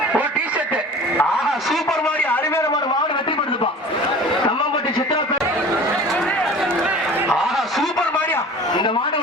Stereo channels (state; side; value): normal; both; correlation 0.41